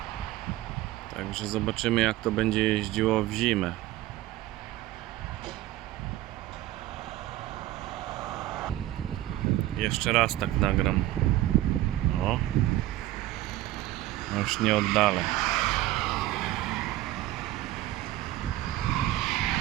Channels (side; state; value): left; quieter; 15.5 dB